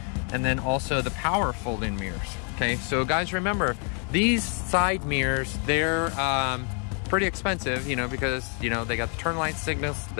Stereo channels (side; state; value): right; quieter; 39.6 dB